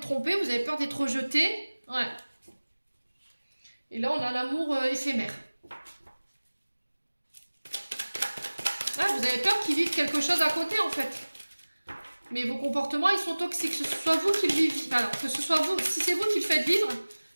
trompé, vous avez peur d'être rejeté. Ouais. Et là, on a l'amour éphémère. qui vivent quelque chose à côté en fait. Mais vos comportements, ils sont toxiques. Que ce soit vous qui le vivez. Alors, que ce soit vous, si c'est vous qui le faites vivre,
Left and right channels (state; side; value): inverted; both; correlation -1.00